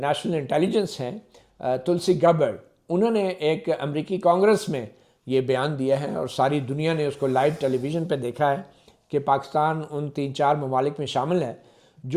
نیشنل انٹیلیجنس ہیں تلسی گبرڈ, انہوں نے ایک امریکی کانگریس میں یہ بیان دیا ہے, اور ساری دنیا نے اس کو لائیو ٹیلی ویژن پہ دیکھا ہے کہ پاکستان ان 3-4 ممالک میں شامل ہے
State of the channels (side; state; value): both; identical; correlation 1.00